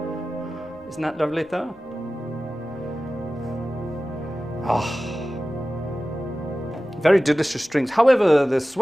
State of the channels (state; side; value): noise; left; rumble, 28 dB below the sound